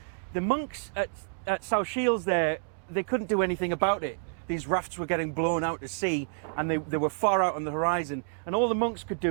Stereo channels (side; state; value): left; silent; digital silence